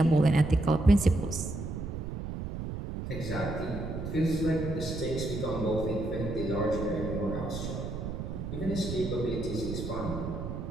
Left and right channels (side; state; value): right; noise; rumble, 6 dB below the sound